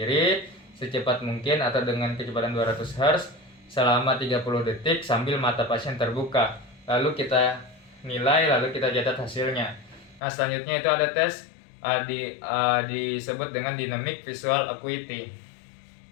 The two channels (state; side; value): drops out; right; at 10.2 s